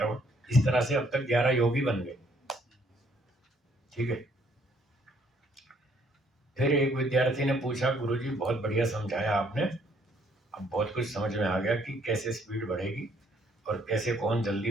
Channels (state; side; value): normal; both; correlation 0.66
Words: इस तरह से अब तक 11 योगी बन गए। ठीक है। फिर एक विद्यार्थी ने पूछा, गुरुजी बहुत बढ़िया समझाया आपने, अब बहुत कुछ समझ में आ गया कि कैसे स्पीड बढ़ेगी और कैसे कौन